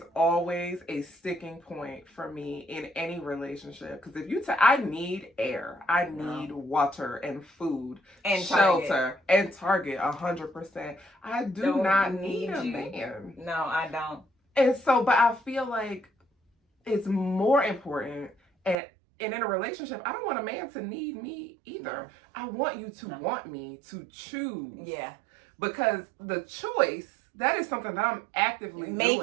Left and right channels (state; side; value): drops out; left; at 18.8 s